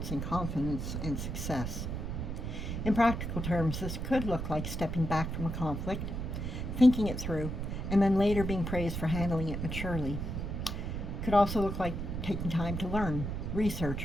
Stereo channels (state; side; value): noise; right; rumble, 4 dB below the sound